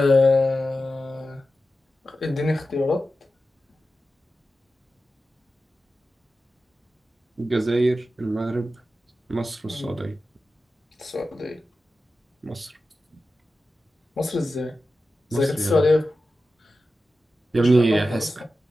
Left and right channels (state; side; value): normal; both; correlation 0.92